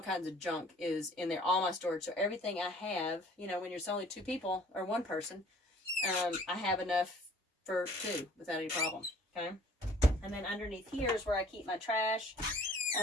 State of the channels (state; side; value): normal; both; correlation 0.53